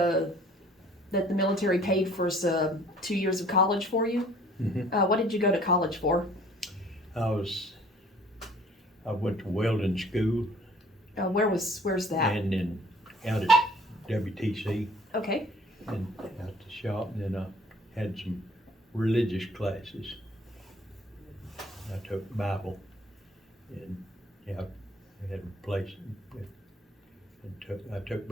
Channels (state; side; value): normal; both; correlation 0.54